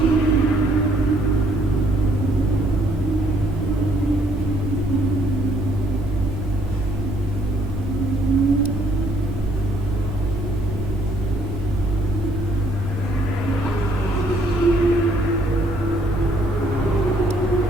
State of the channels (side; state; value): both; normal; correlation 0.66